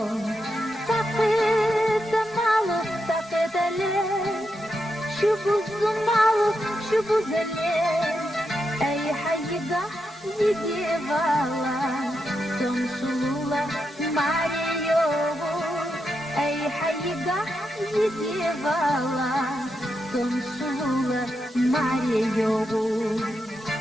سقيت مالو سقيت ليه شوفوا الزمالو شوفوا زليه أي حيقة يجي بالا تمشولا ماريو أي حيقة يجي بالا تمشولا ماريو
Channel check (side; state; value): both; normal; correlation 0.85